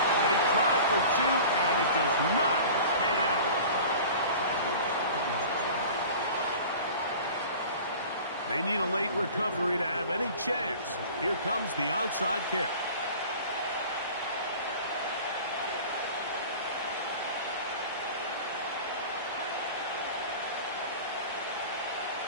They tried for 2, and it does not pan out. They need a late recovery to have any chance. Here comes the onside kick.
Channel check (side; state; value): both; inverted; correlation -0.40